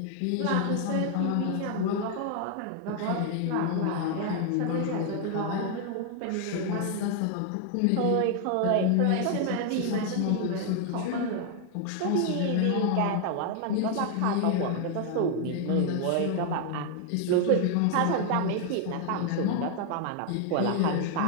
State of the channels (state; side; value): different; both; correlation 0.00